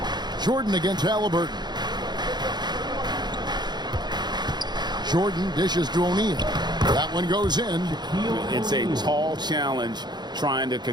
Jordan against Halliburton. Jordan dishes to O'Neal. That one goes in. It's a tall challenge trying to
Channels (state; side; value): late; left; 0.21 ms